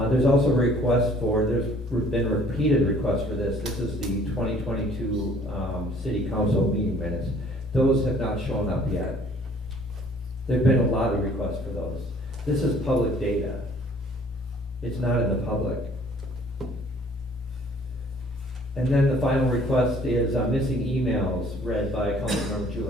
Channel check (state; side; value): normal; both; correlation 0.56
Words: also there's been repeated requests for this. This is the 2022 City Council meeting minutes. Those have not shown up yet. There've been a lot of requests for those. This is public data. It's not in the public. And then the final request is missing emails read by Councilmember